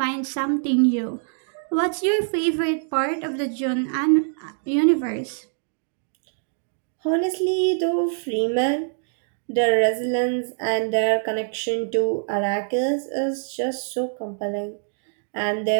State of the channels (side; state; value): left; silent; digital silence